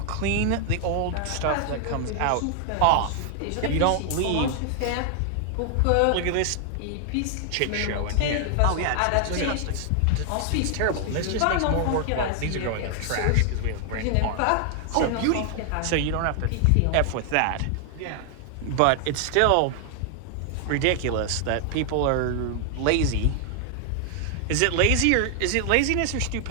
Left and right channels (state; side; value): different; both; correlation 0.00